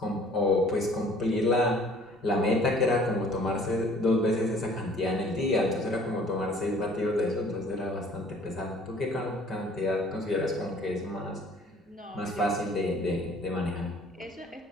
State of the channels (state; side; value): normal; both; correlation 0.54